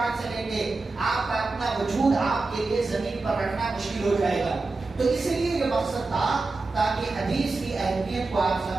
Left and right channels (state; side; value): quieter; left; 3.6 dB